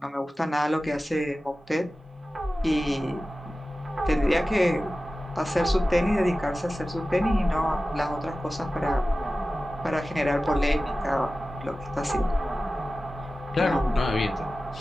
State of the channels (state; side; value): normal; both; correlation 0.95